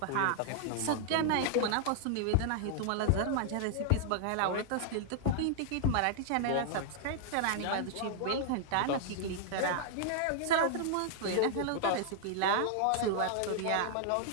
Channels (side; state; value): both; different; correlation -0.01